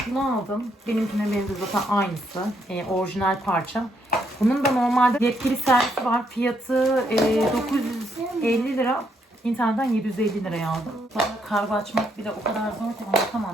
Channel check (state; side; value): normal; both; correlation 0.74